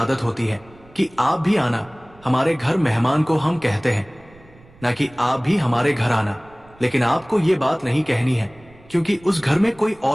होती है कि आप भी आना हमारे घर, मेहमान को हम कहते हैं, ना कि आप भी हमारे घर आना, लेकिन आपको ये बात नहीं कहनी है, क्योंकि उस घर में कोई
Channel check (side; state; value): right; noise; rumble, 26 dB below the sound